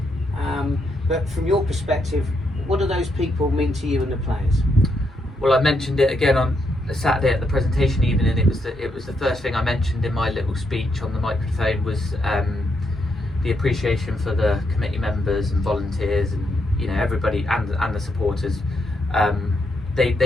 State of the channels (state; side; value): normal; both; correlation 0.79